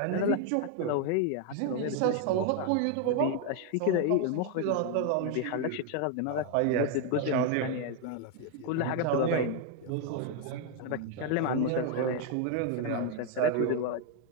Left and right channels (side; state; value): both; different; correlation 0.01